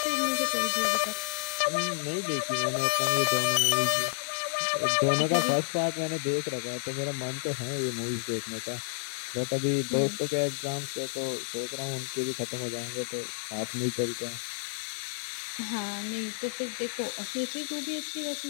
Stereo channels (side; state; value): right; silent; digital silence